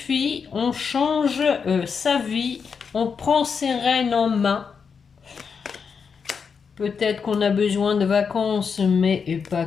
on change sa vie, on prend ses rênes en main. Peut-être qu'on a besoin de vacances, mais et pas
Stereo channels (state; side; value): quieter; right; 6.0 dB